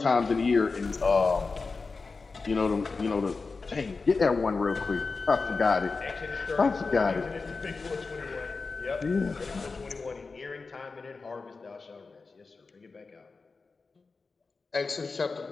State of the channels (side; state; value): right; quieter; 4.2 dB